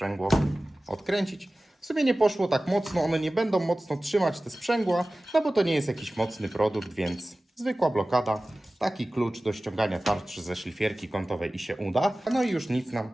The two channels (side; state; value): both; normal; correlation 0.97